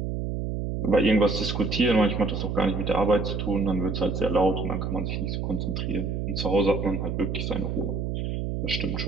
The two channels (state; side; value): noise; right; hum, 2 dB below the sound